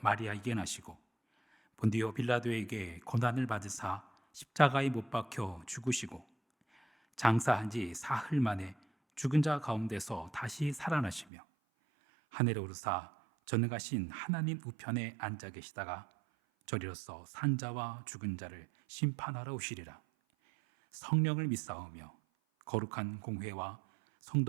마리아에게 나시고 본디오 빌라도에게 고난을 받으사 십자가에 못 박혀 죽으시고 장사한 지 사흘 만에 죽은 자 가운데서 다시 살아나시며 하늘에 오르사 전능하신 하나님 우편에 앉아 계시다가 저리로서 산자와 죽은 자를 심판하러 오시리라. 성령을 믿사오며 거룩한 공회와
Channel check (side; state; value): left; drops out; at 11.2 s